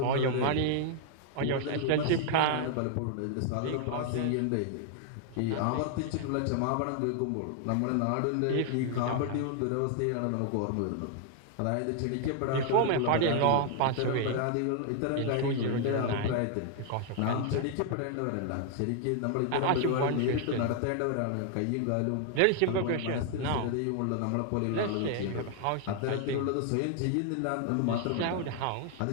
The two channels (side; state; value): both; different; correlation 0.00